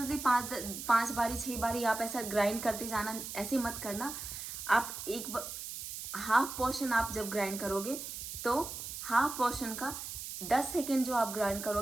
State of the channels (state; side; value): noise; right; hiss, 8 dB below the sound